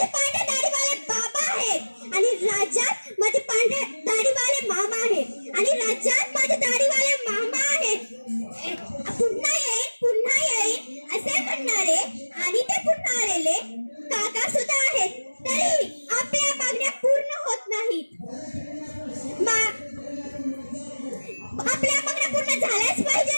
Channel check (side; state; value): both; inverted; correlation -1.00